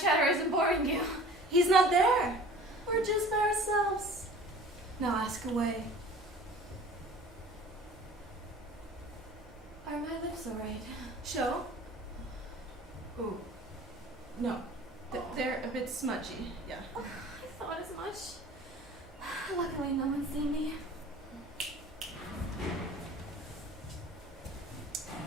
chatter isn't boring you? He's not there. We're just by ourselves. Now ask away. Are my lips alright? Show? Ooh. No. They're a bit smudgy. Yeah. Oh, I thought as much. Luckily, no one's seen me.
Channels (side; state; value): both; normal; correlation 0.45